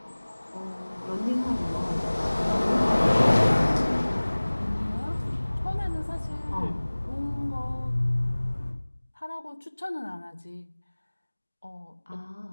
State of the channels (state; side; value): inverted; both; correlation -1.00